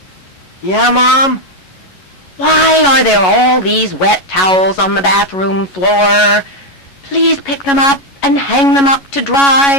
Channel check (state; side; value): late; right; 11 ms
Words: Yeah, Mom? Why are there all these wet towels on the bathroom floor? Please pick them up and hang them up to